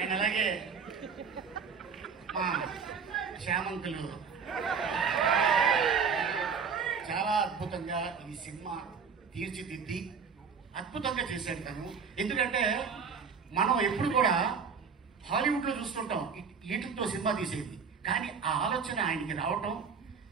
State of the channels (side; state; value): left; quieter; 6.0 dB